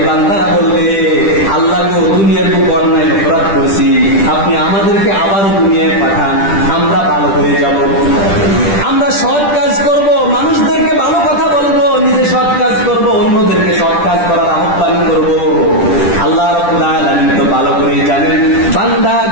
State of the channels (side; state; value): right; late; 10 ms